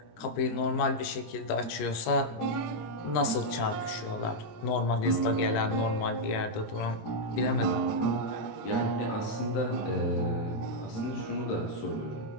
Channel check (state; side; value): late; right; 19 ms